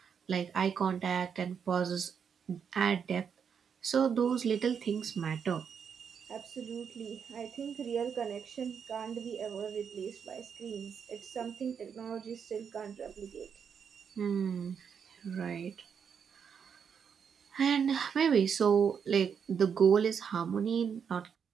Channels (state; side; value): quieter; left; 7.1 dB